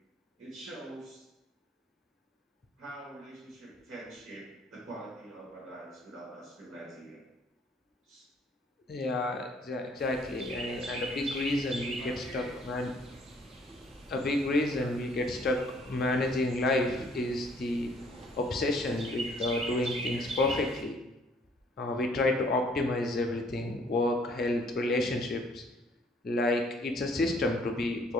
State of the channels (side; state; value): both; normal; correlation 0.61